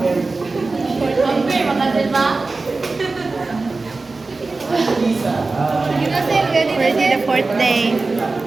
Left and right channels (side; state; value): left; quieter; 3.7 dB